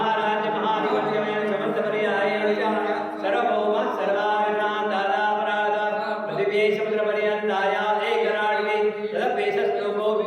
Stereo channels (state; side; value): identical; both; correlation 1.00